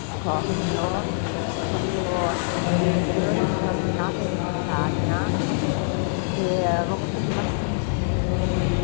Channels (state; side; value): silent; right; digital silence